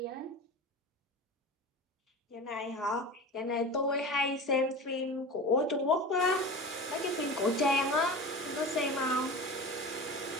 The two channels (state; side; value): normal; both; correlation 0.32